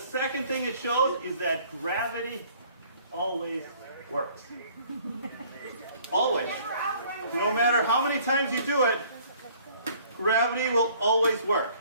thing it shows is that gravity always works. Always. No matter how many times you do it, gravity will always work.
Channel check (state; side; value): inverted; both; correlation -0.56